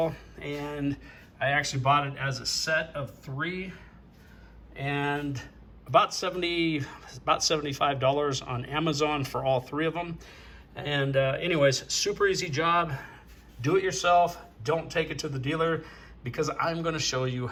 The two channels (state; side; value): identical; both; correlation 1.00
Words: and I actually bought it as a set of 3, and about $75 on Amazon for all 3 of them. And anyways, super easy job. Do it yourself. Don't take it to the dealer, because I'm going to show you